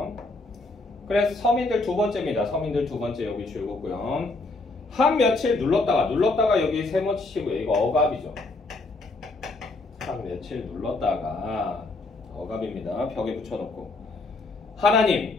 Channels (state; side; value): quieter; right; 3.2 dB